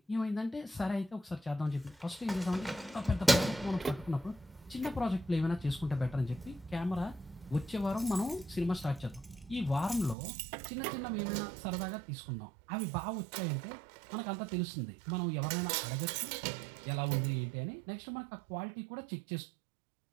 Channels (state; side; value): drops out; left; at 10.2 s